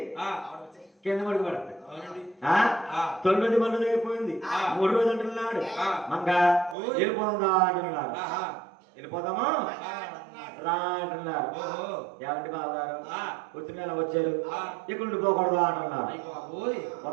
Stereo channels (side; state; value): left; drops out; at 6.8 s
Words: కింద పడుకు పడతాయి. 9 మంది అయిపోయింది. 3 రోజులు అంటున్నాడు. మంగ వెళ్ళిపోదా అంటున్నాడు. వెళ్ళిపోదామా రా అంటున్నారు. ఏమంటే బావగారు వచ్చిన వచ్చారు, ఇక్కడ నుండి పోకూడదు అంటున్నారు.